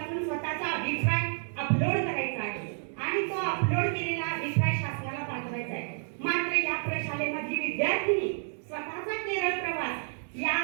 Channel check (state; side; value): silent; left; 58 dB below the other